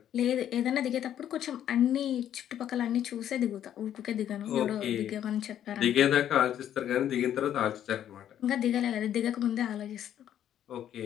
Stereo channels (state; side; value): quieter; right; 10.6 dB